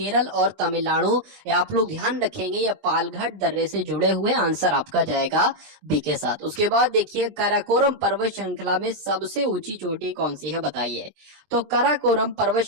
और तमिलनाडु। आप लोग ध्यान रखेंगे ये पालघाट दर्रे से जुड़े हुए, आंसर आपका जाएगा बी के साथ। उसके बाद देखिए काराकोरम पर्वत श्रृंखला में सबसे ऊंची चोटी कौन सी है, बताइए। तो काराकोरम पर्वत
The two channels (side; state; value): left; late; 20 ms